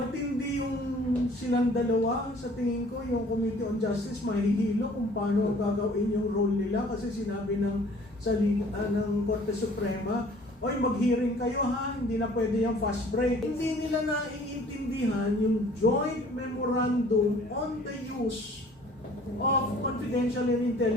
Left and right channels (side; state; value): both; normal; correlation 0.53